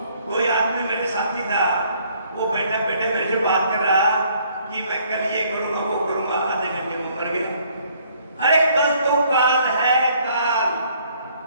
कोई आदमी मेरे साथी था, वो बैठे बैठे मेरे से बात कर रहा कि मैं कल ये करूंगा वो करूंगा, आधे घंटे में मर गया। अरे कल तो काल है, काल।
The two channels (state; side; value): inverted; both; correlation -0.63